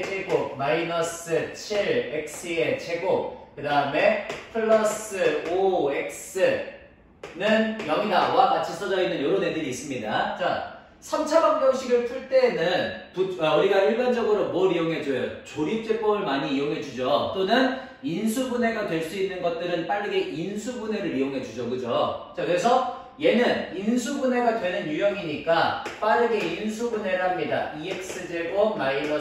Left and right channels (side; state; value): both; identical; correlation 1.00